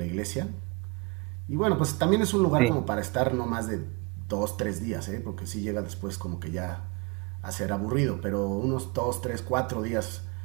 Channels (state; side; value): quieter; left; 28.8 dB